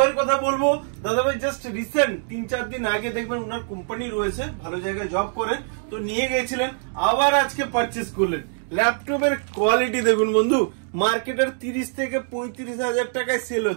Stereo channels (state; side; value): silent; left; digital silence